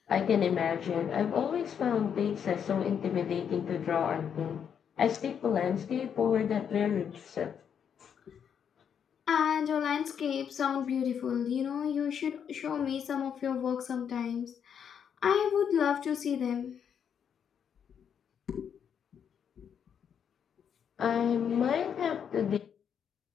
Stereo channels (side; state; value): right; quieter; 7.9 dB